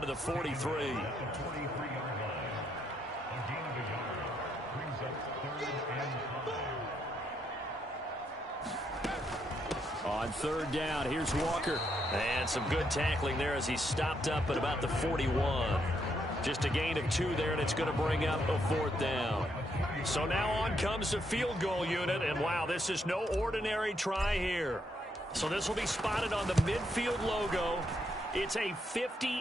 the 43. On third down, here's Walker. And some good tackling there as he stopped up at about the 41. Just a gain of 2 there, and it's going to bring up a 4th down. So now on comes the field goal unit, and wow, this is no ordinary try here. So this will be spotted on the midfield logo. It's a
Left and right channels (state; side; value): normal; both; correlation 0.76